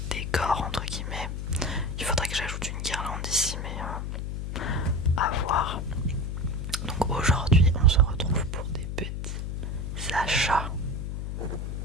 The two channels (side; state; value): left; noise; hum, 4 dB below the sound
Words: décor entre guillemets? Il faudrait que j'ajoute une guirlande ici, mais à voir. Donc aujourd'hui on se retrouve pour des petits achats.